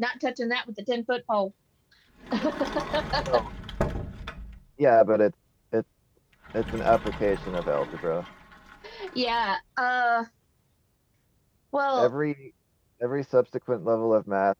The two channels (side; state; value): both; identical; correlation 1.00